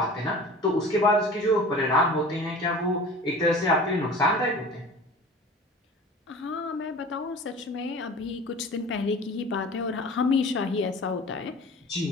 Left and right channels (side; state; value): both; normal; correlation 0.40